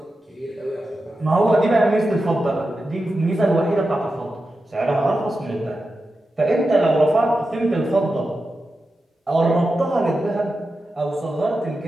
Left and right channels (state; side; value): normal; both; correlation 0.91